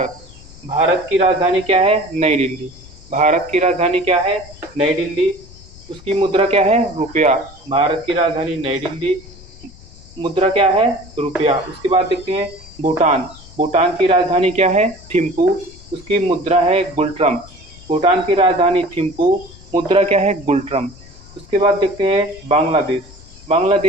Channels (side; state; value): left; noise; rumble, 21 dB below the sound